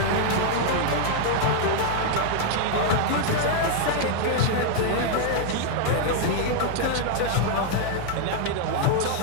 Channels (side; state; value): both; different; correlation 0.00